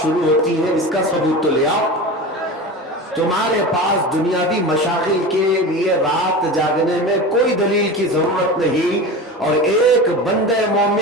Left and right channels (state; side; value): normal; both; correlation 0.29